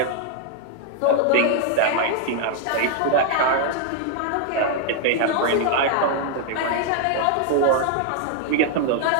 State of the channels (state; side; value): different; both; correlation 0.00